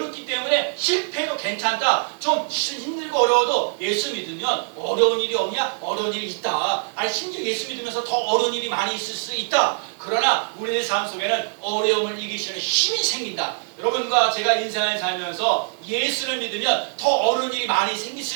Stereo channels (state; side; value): silent; left; 63 dB below the other